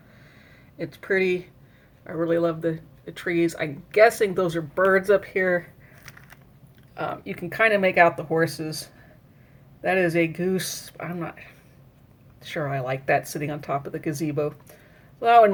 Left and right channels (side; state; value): both; identical; correlation 1.00